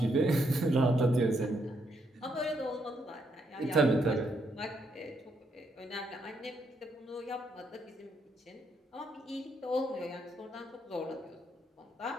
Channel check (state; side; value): normal; both; correlation 0.76